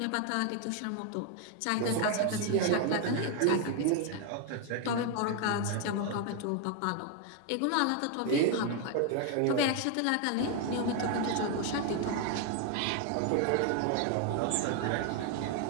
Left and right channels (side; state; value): both; different; correlation 0.01